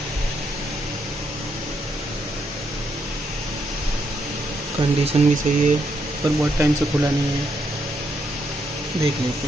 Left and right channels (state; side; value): normal; both; correlation 0.77